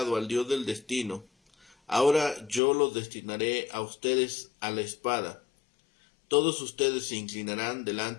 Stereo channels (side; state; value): right; drops out; at 2.6 s